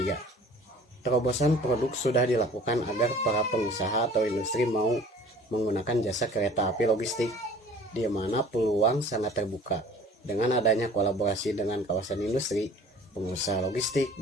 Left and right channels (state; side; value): normal; both; correlation 0.48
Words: Terobosan produk sudah dilakukan agar para pengusaha atau industri mau menggunakan jasa kereta api logistik, di mana peluang sangat terbuka dengan adanya kolaborasi dengan kawasan industri, pengusaha logistik,